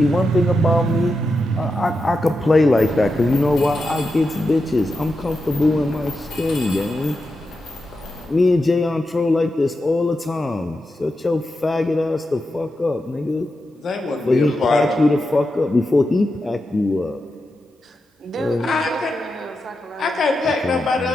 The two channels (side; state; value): both; normal; correlation 0.88